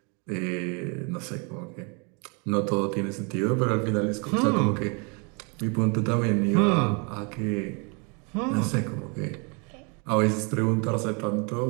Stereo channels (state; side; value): quieter; left; 33.7 dB